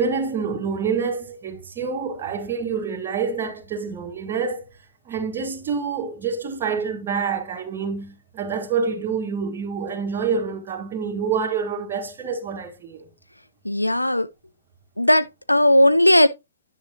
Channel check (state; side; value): inverted; both; correlation -0.59